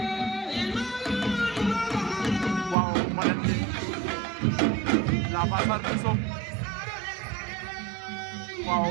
waaw Mbadane la pasar bi Sow waaw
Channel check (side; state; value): left; drops out; at 2.8 s